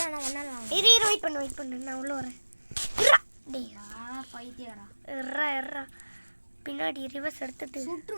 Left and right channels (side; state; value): both; inverted; correlation -1.00